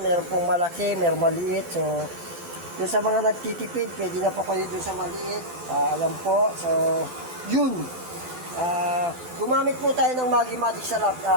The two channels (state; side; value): late; left; 12 ms